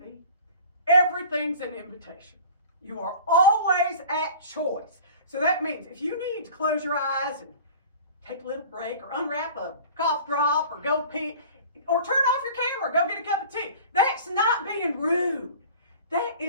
B, everything's an invitation. You are always at choice. So that means if you need to close your eyes and take a little break or unwrap a cough drop or go pee or turn off your camera, go get a cup of tea, that's not being rude. That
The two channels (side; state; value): both; inverted; correlation -0.42